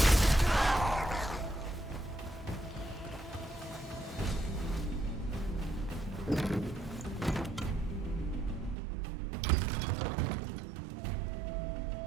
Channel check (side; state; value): left; drops out; at 8.8 s